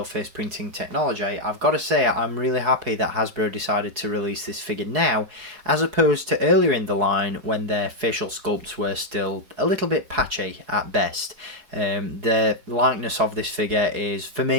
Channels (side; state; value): left; late; 4.7 ms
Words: face printing technology, I've got to say I'm really happy that Hasbro decided to release this figure now, as opposed to earlier in the line when their facial sculpts were still a little bit patchy at best. The likeness of this figure is, for